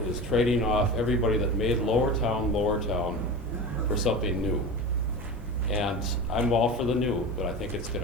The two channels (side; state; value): left; noise; hum, 21 dB below the sound